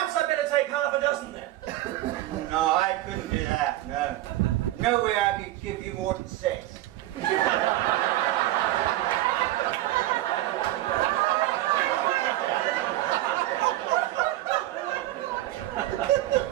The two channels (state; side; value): quieter; left; 15.6 dB